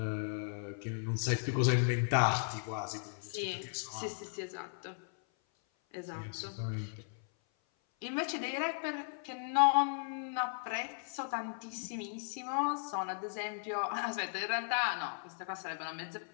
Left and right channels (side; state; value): right; silent; 53 dB below the other